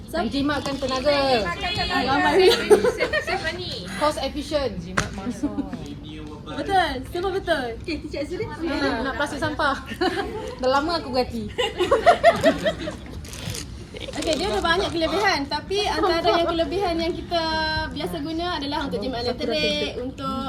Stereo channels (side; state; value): both; identical; correlation 1.00